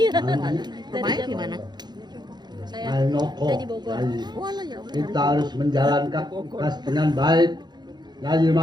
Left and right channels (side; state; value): left; late; 0.21 ms